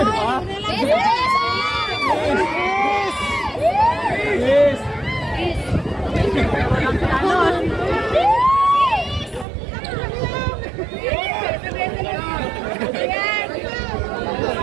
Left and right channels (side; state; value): left; drops out; at 9.5 s